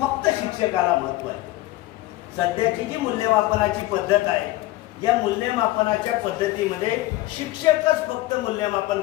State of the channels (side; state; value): right; quieter; 17.8 dB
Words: शिक्षकाला महत्व आहे. सध्याची जी मूल्यमापनाची पद्धत आहे या मूल्यमापनाच्या पद्धतीमध्ये शिक्षकच फक्त मूल्यमापन